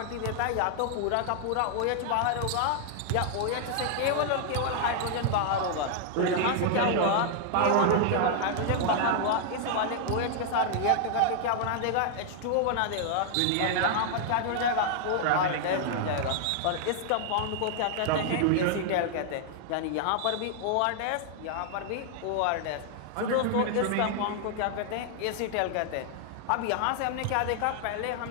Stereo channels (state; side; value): different; both; correlation 0.00